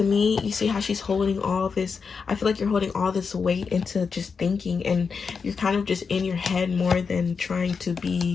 me, you see how she's holding all this, I feel like you're holding all this weight into just thinking, and you're kind of just in your head more than trying to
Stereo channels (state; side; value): quieter; right; 5.5 dB